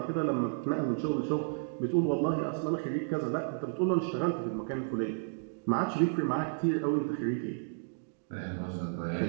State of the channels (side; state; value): left; silent; digital silence